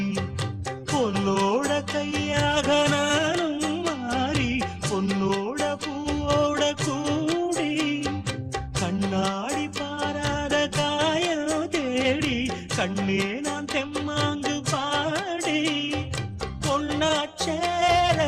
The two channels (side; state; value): both; identical; correlation 1.00